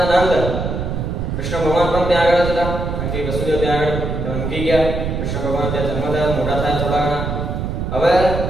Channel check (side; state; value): right; noise; rumble, 3 dB below the sound